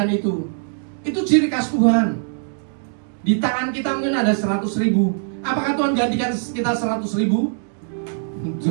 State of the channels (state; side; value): silent; left; digital silence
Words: itu. Itu ciri khas Tuhan. Di tangan kita mungkin ada 100.000. Apakah Tuhan gantikan kita 100.000?